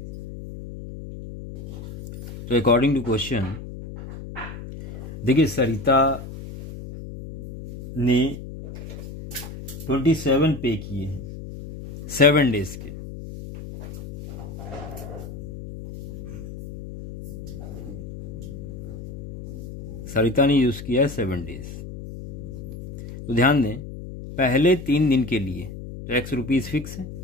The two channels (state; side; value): noise; left; hum, 11 dB below the sound